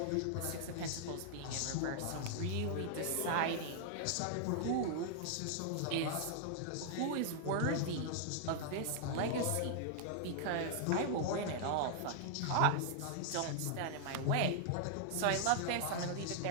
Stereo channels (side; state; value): both; different; correlation 0.00